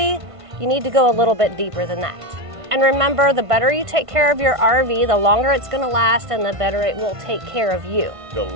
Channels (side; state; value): left; late; 1.5 ms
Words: you need to go a little bit deeper than that. And remember, the better you take care of your RV, the longer it's gonna last and the better it will take care of you. The